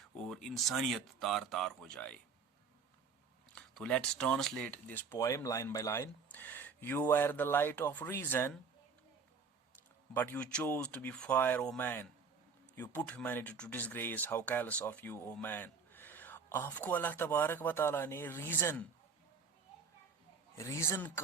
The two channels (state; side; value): quieter; left; 5.5 dB